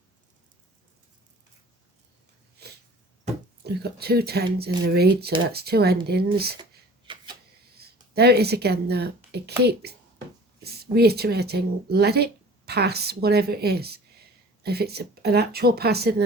We've got 2 10s in the read, so that's 2 endings. There it is again though. It keeps reiterating, let it pass, whatever it is. If it's an actual passing,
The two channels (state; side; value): normal; both; correlation 0.45